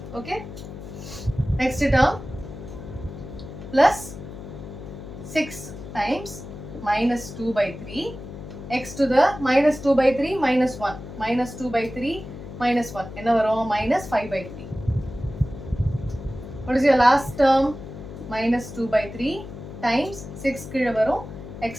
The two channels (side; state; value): left; noise; hum, 12 dB below the sound